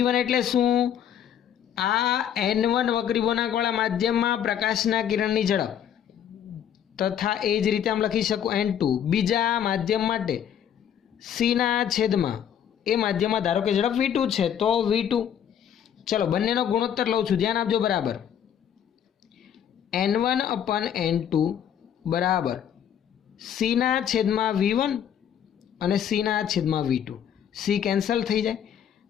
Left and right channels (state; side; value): quieter; right; 9.3 dB